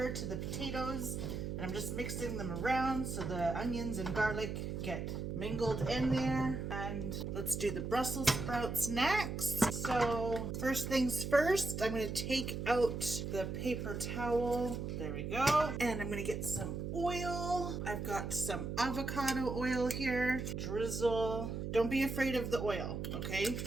to the potatoes. And I'm just mixing them around so the onions and garlic get mingled in there. And let's do the Brussels sprouts next. So first things first, I'm going to take out the paper towel. There we go. And I'm going to get some oil. I've got some avocado oil here. Drizzle. Don't be afraid of the oil, okay?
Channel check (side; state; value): right; noise; hum, 4 dB below the sound